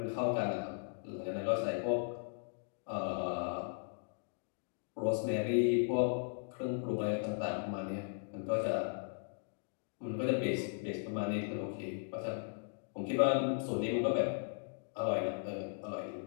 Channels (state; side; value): silent; right; digital silence